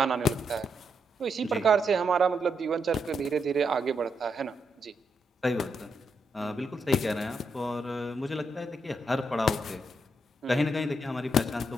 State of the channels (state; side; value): normal; both; correlation 0.80